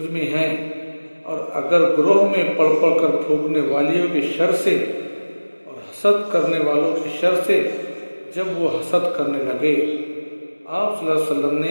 میں ہے، اور اگر گروہ میں پڑھ پڑھ کر پھونکنے والیوں کے شر سے اور حسد کرنے والوں کے شر سے جب وہ حسد کرنے لگے۔ آپ صلی اللہ علیہ وسلم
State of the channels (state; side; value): inverted; both; correlation -1.00